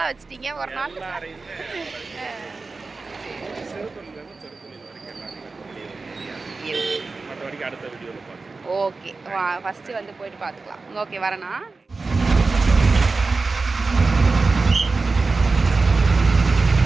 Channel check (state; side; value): quieter; left; 3.9 dB